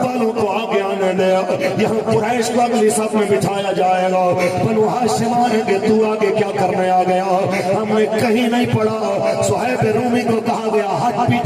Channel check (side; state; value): both; identical; correlation 1.00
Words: والوں کو آگے آنے دے یہاں قریش کو اگلی صف میں بٹھایا جائے گا بنو ہاشم آئیں گے تو آگے کیا کرنے آ گیا ہم نے کہیں نہیں پڑھا صہیب رومی کو کہا گیا ہٹ